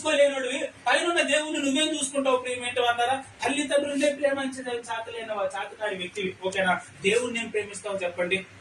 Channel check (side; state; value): both; identical; correlation 1.00